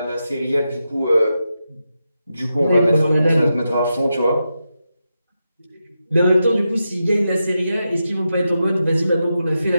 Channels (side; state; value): both; inverted; correlation -0.88